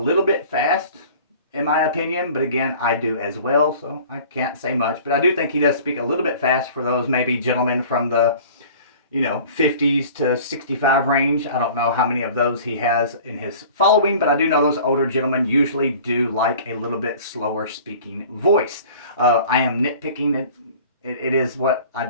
bit fast, in my opinion, but again, I do as well, so I can't say much. But I do think he does speak a little bit fast for those maybe gentlemen from the, 50s to 65 range. I don't know how many of those he has in his following, but I do know those older gentlemen usually do like a little bit slower speaking voice. I am nitpicking it. It is what I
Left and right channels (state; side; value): inverted; both; correlation -0.45